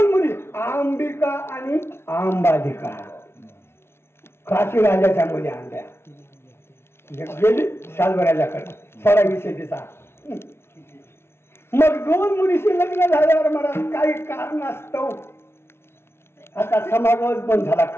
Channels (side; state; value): right; late; 0.12 ms